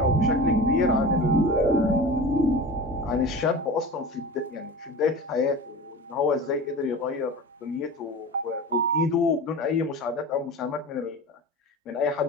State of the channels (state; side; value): normal; both; correlation 0.33